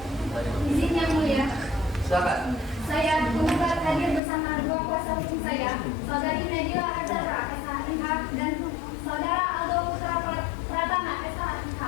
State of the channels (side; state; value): right; drops out; at 4.2 s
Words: Izin Yang Mulia. Silakan. Saya penggugat hadir bersama dua kuasa hukum saya, Saudari Nadila Azhara SHMH dan Saudara Aldo Putra Pratama SHMH.